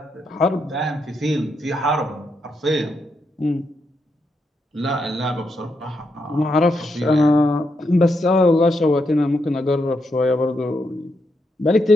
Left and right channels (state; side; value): normal; both; correlation 0.81